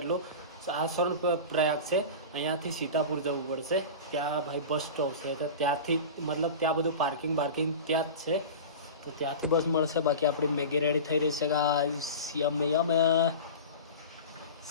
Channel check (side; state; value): both; inverted; correlation -0.31